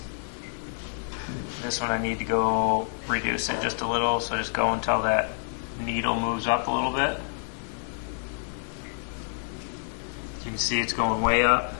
this one I need to go reduce it just a little, so just go until that needle moves up a little bit. You can see it's going way up.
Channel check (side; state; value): right; silent; digital silence